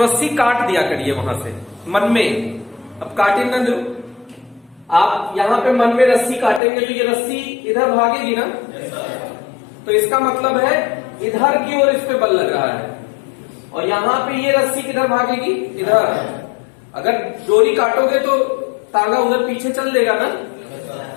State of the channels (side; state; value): right; drops out; at 6.6 s